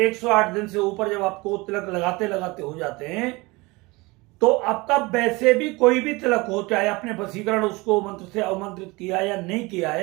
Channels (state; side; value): quieter; left; 23.8 dB